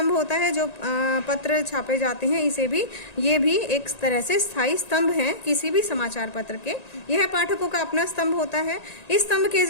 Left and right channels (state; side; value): late; right; 1.9 ms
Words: होता है जो पत्र छापे जाते हैं। ये भी एक तरह से स्थायी स्तंभ है किसी भी समाचार पत्र के। यह पाठकों का अपना स्तंभ होता है। इस स्तंभ के